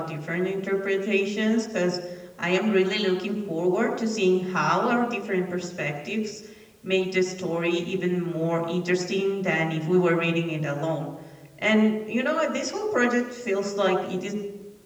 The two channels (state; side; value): identical; both; correlation 1.00